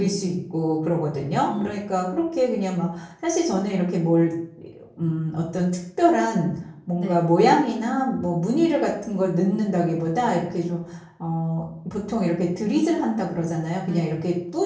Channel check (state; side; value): identical; both; correlation 1.00